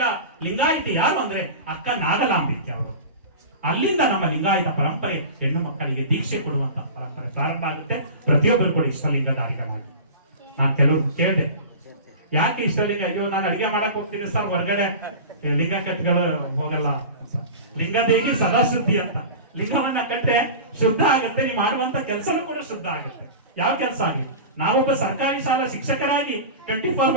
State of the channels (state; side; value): inverted; both; correlation -0.32